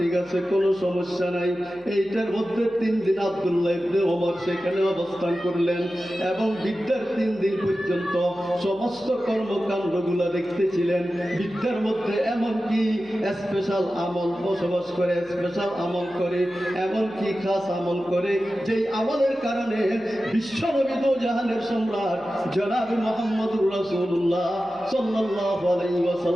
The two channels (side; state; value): left; noise; hum, 29 dB below the sound